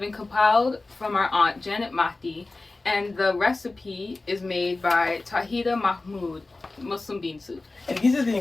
compiled from our aunt Janet Mahdi, and the recipe is made by Tauheedah Mahmoud, Muslim bean soup. And these are the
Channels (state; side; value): quieter; right; 3.3 dB